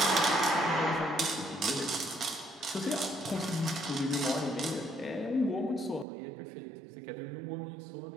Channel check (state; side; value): drops out; left; at 6.1 s